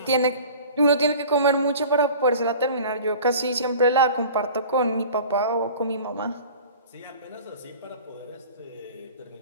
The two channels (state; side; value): inverted; both; correlation -0.42